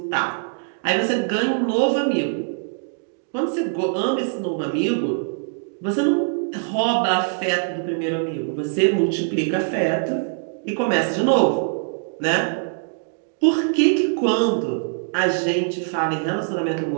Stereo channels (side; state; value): left; silent; digital silence